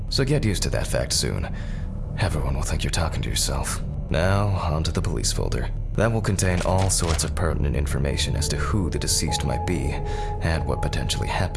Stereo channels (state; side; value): identical; both; correlation 1.00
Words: So get used to that fact soon. Everyone will think you're talking to yourself. Now, onto the police folder. That will contain all sorts of pertinent information as to who the deceased might be and what potentially